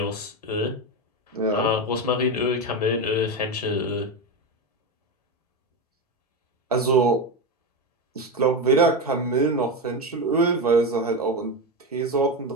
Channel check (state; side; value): normal; both; correlation 0.15